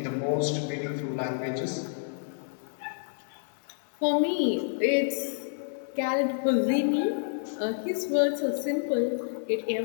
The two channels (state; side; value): silent; right; 55 dB below the other